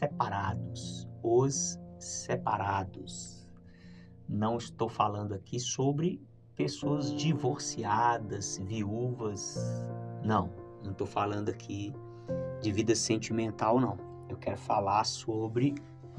Os separados. Não estou falando aqui sobre pessoas divorciadas, viúvas. Não estou falando aqui de vida sentimental, não. Eu quero falar sobre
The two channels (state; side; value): identical; both; correlation 1.00